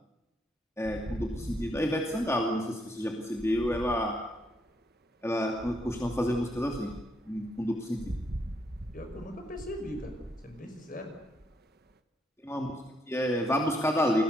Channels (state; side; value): normal; both; correlation 0.75